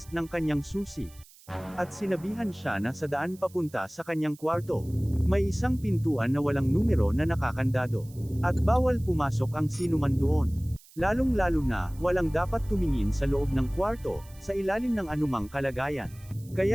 ng kanyang susi. At sinabihan siya na sa daan papunta sa kanyang kwarto. May isang pintuan na walang numero na nakakandado. At bawal pumasok ang sinuman doon. Lalong-lalo na, walang dapat tumingin sa loob ng kwarto, sa ilalim ng anumang kalagayan.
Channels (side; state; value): right; noise; hiss, 24 dB below the sound